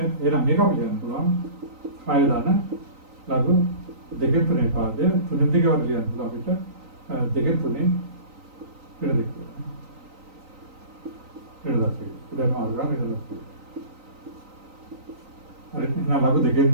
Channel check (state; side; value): late; left; 3.9 ms